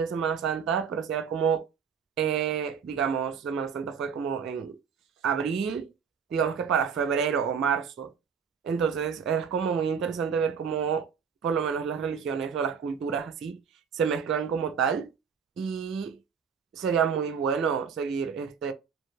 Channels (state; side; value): quieter; left; 6.7 dB